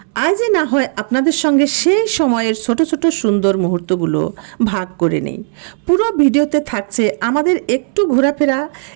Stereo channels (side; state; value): left; silent; 66 dB below the other